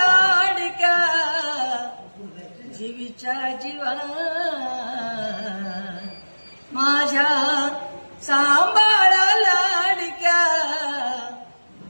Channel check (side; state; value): both; inverted; correlation -1.00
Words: जीवीच्या जीवा माझ्या सांभाळ लाडक्या